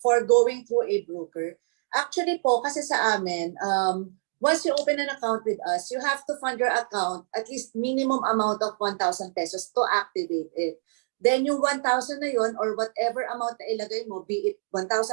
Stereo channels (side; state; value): left; silent; digital silence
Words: going through a broker? Actually po, kasi sa amin, once you open an account with us, you have to fund your account at least minimum amount of 1,000 pesos to activate it. Then yung 1,000 na yun or whatever amount na ilagay mo, be it